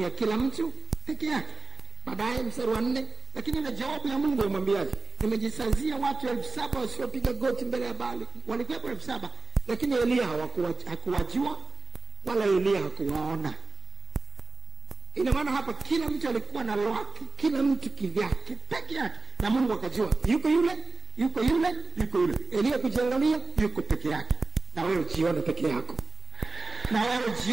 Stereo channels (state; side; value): quieter; left; 3.4 dB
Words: ya kila mtu peke yake. Baadaye mstari wa 4, lakini ile jawabu ya Mungu imwambiaje? Nimejisazia watu 7,000 wasiopiga goti mbele ya Baali. Walikuwepo 7,000, lakini Elia hakuwajua wala Elia hakuwaona. Ina maana hapa kila mtu alikuwa na lwake, kila mtu kivyake peke yake, na Mungu akajua yuko yule, yuko yule, yuko yule. Elia kujiangalia, yuko peke yake. Na wewe jione peke yako. Na wewe